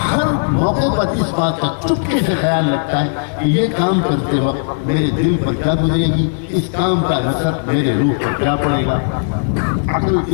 ہر موقع پر اس بات کا چپکے سے خیال رکھتا ہے کہ یہ کام کرتے وقت میرے دل پر کیا گزرے گی، اس کام کا اثر میرے روح پر کیا پڑے گا، عقل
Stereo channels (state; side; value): silent; right; digital silence